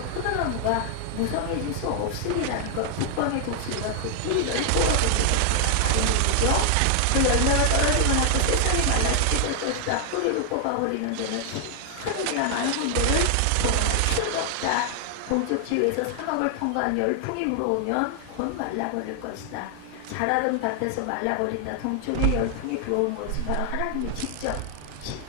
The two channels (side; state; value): both; different; correlation 0.00